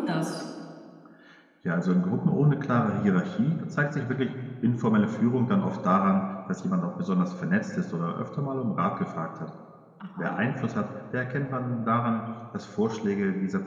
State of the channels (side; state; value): both; identical; correlation 1.00